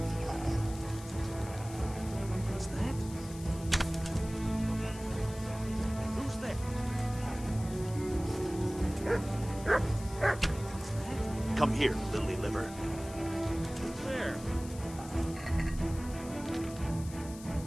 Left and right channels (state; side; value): noise; left; hiss, 16 dB below the sound